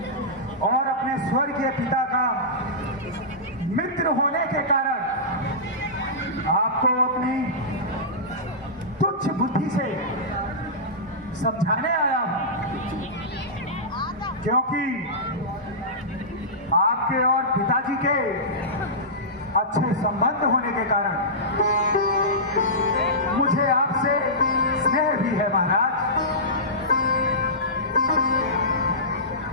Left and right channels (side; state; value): both; normal; correlation -0.17